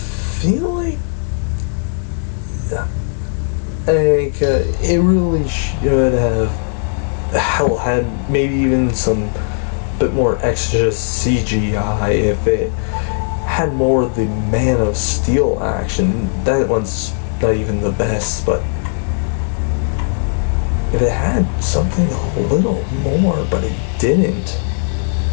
like it really should have had maybe even some bit more extra CGI if it had more of the Man of Steel action. That one's not even the best, but if it had something a little more, but it didn't.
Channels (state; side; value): silent; right; digital silence